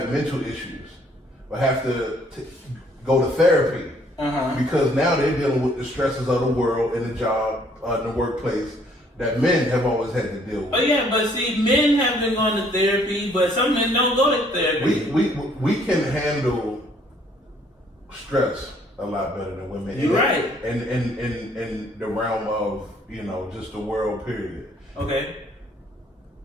mental issues, or have to go to therapy because now they're dealing with the stresses of the world and the job, in the workplace, that men have always had to deal with. Oh yeah, but see, men have been going to therapy, but some men don't go to therapy. We can handle stress a lot better than women. You're right. And in the realm of just the world period. Okay.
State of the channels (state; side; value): normal; both; correlation 0.63